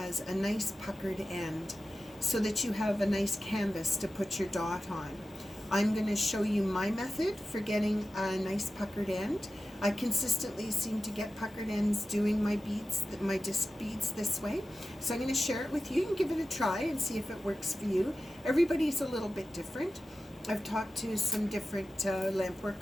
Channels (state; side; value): normal; both; correlation 0.94